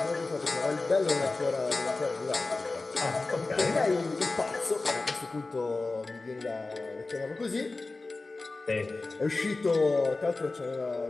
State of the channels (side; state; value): right; quieter; 3.4 dB